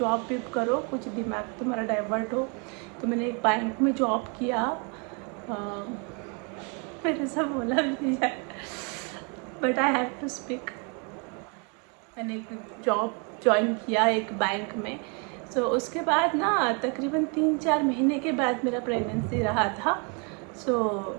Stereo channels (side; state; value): left; quieter; 35.2 dB